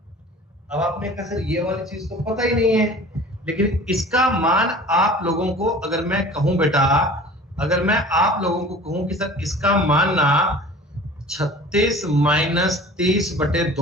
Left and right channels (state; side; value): normal; both; correlation 0.43